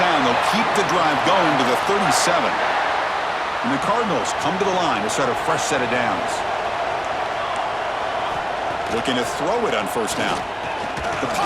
they'll keep the drive going to the 37. And the Cardinals come to the line to start a fresh set of downs. Looking to throw it on first down. The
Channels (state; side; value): identical; both; correlation 1.00